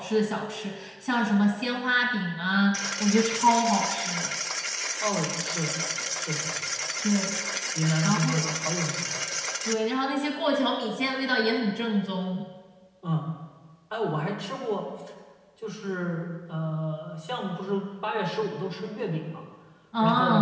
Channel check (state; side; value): identical; both; correlation 1.00